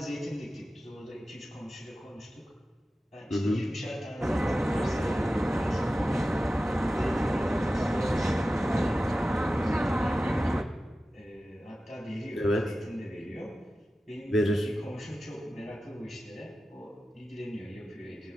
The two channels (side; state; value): both; normal; correlation 0.94